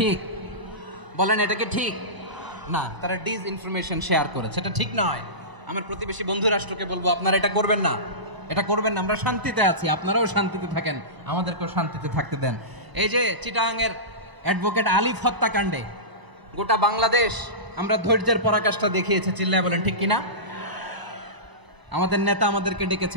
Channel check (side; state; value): left; late; 1.0 ms